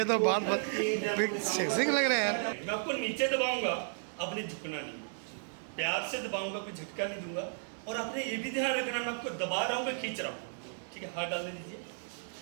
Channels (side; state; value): left; silent; digital silence